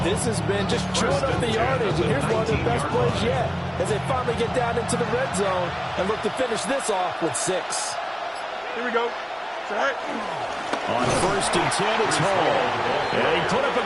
this has been, just chewing up the yardage. And here's one of their best plays yet as they finally get down into the red zone and look to finish this off with 6. Here we go. Set. On 1st and 10, it's Hall. And he put up a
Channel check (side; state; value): both; identical; correlation 1.00